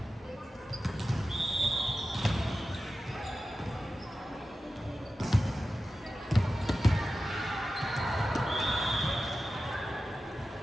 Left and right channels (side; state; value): both; normal; correlation 0.93